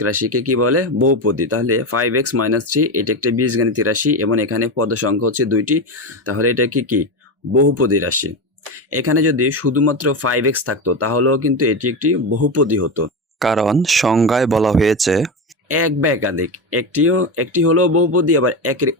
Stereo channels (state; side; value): normal; both; correlation 0.17